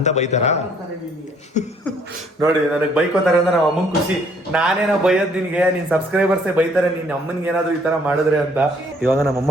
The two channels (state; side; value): normal; both; correlation 0.63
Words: ಬೈತಾರ ನೋಡಿ. ನನಗೆ ಬೈಕೋತಾರೆ ಅಂದ್ರೆ ನಮ್ಮ ಅಮ್ಮಂಗೆ ಖುಷಿ. ನಾನೇನೋ ಬೈಯೋದು ನಿನ್ಗೆ, ನಿನ್ ಸಬ್ಸ್ಕ್ರೈಬರ್ಸೇ ಬೈತಾರೆ ನೀನ್ ಅಮ್ಮನ್ಗೆ ಏನಾದ್ರು ಈ ತರ ಮಾಡಿದ್ರೆ ಅಂತ. ಇವಾಗ